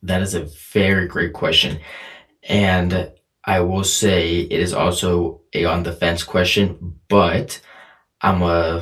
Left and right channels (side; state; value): both; identical; correlation 1.00